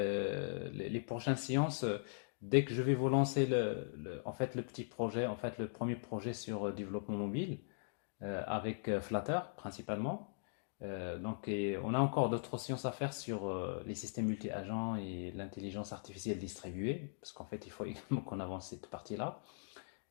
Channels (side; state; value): right; silent; digital silence